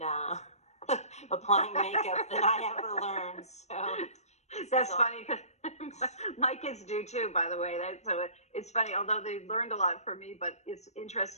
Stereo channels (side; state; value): right; late; 0.32 ms